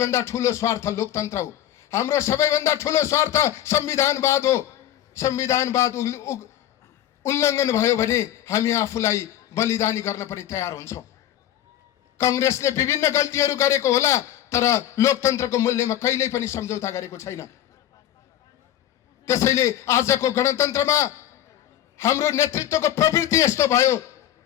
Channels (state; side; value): quieter; right; 12.0 dB